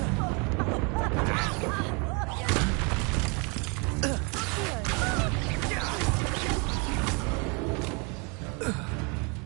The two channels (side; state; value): left; quieter; 32.6 dB